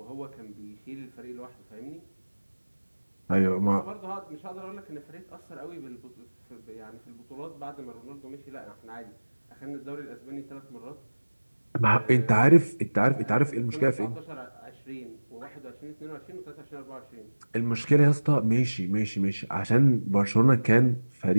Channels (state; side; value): inverted; both; correlation -1.00